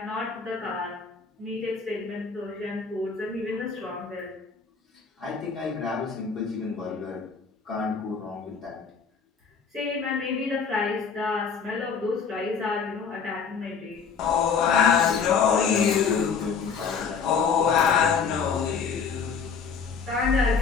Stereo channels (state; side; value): quieter; right; 5.9 dB